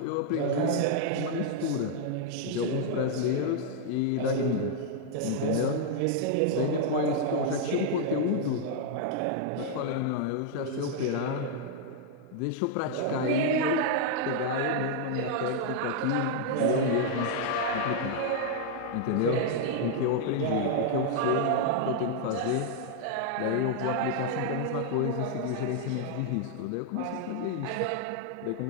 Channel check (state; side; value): different; both; correlation -0.01